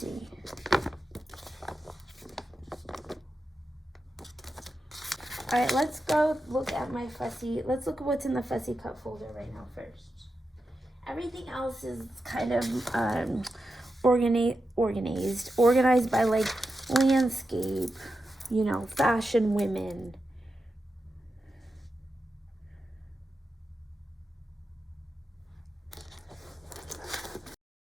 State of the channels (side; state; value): both; normal; correlation 0.90